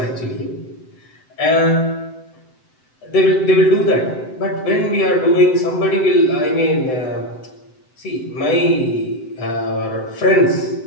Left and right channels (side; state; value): right; late; 7.8 ms